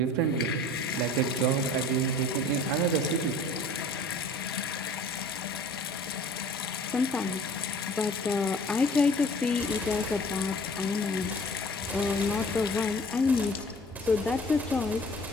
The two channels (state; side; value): normal; both; correlation 0.48